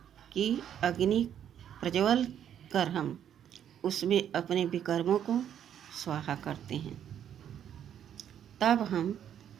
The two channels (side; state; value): left; quieter; 9.6 dB